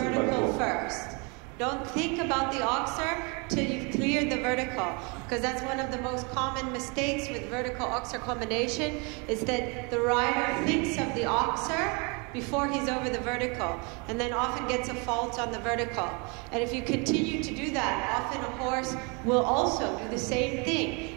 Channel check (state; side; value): quieter; left; 31.8 dB